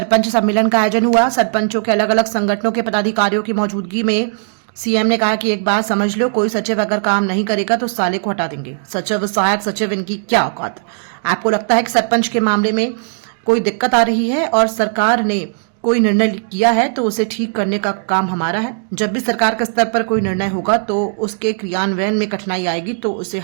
सम्मेलन का आयोजन हुआ। सरपंचों के अलग अलग संगठनों के पदाधिकारियों की मौजूदगी में सीएम ने कहा कि एक बात समझ लो, कोई सचिव अगर काम नहीं करेगा तो साले को हटा देंगे। सचिव, सहायक सचिव, इनकी क्या औकात। आपको लगता है कि सरपंच के मामले में कोई दिक्कत आ रही है और सरकार ने कोई निर्णय किया है तो उसे ठीक करने का काम हमारा है। जब भी सरकार के स्तर पर कोई निर्णय होगा तो उसके क्रियान्वयन में कठिनाई आएगी तो उसे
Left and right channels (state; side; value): silent; left; digital silence